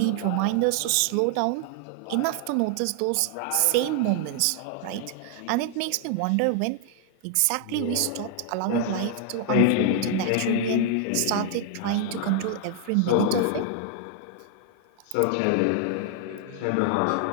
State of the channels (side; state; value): both; different; correlation 0.00